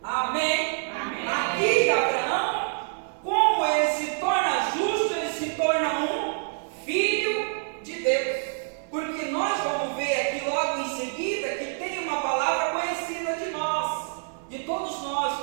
amém? Amém. Aqui Abraão, como ele se torna justo, ele se torna um filho de Deus. Porque nós vamos ver aqui logo em seguida que tem uma palavra conhecida de nós, de todos nós,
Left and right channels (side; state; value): left; silent; digital silence